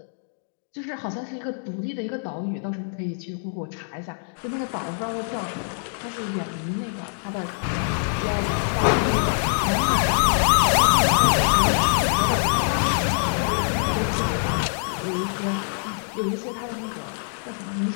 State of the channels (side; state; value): right; silent; digital silence